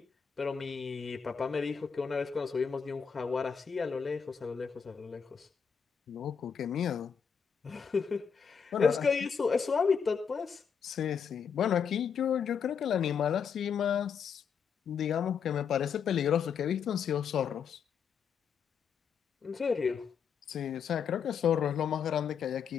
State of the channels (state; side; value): quieter; right; 6.8 dB